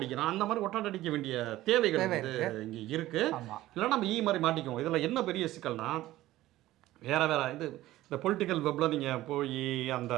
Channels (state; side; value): quieter; left; 15.8 dB